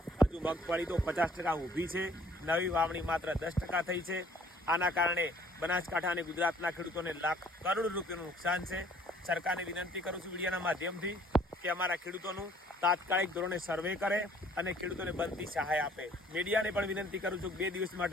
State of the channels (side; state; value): both; normal; correlation 0.58